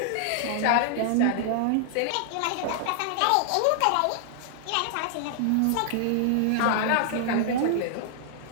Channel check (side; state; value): both; different; correlation -0.01